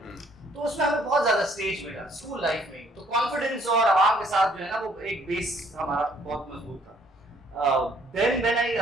तो उसमें हमें बहुत ज़्यादा स्टेज मिला स्कूल लाइफ में. तो कॉन्फिडेंस और आवाम के साथ जो है ना वो एक बेस हमारा बहुत मजबूत था. Then when I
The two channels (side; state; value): both; normal; correlation 0.63